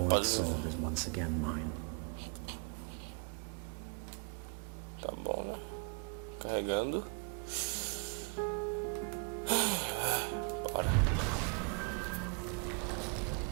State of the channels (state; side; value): quieter; left; 39.4 dB